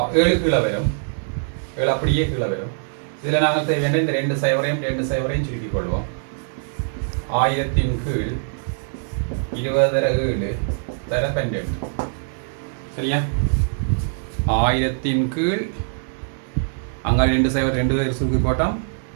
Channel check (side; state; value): left; silent; digital silence